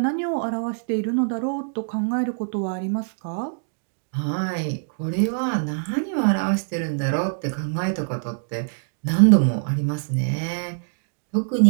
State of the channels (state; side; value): silent; left; digital silence